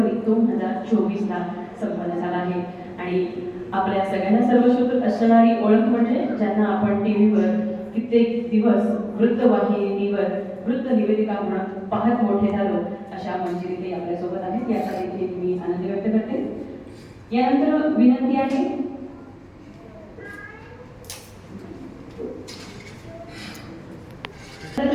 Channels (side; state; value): both; identical; correlation 1.00